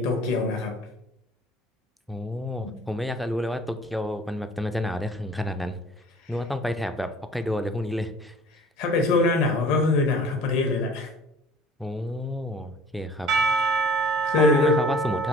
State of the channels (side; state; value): both; normal; correlation 0.48